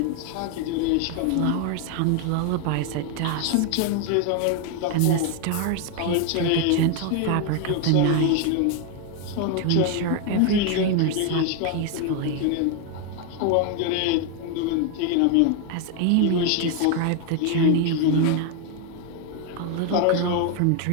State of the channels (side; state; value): both; different; correlation 0.01